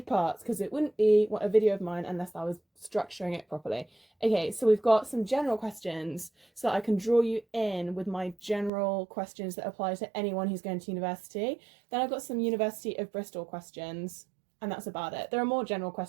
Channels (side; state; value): left; drops out; at 8.7 s